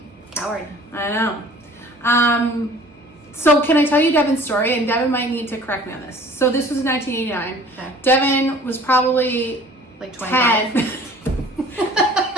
Coward. I know. So can I tell you Devin's story? And Devin might need to correct me on this. So this was 1989. Okay. Devin was probably Like 25. 10.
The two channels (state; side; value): normal; both; correlation 0.49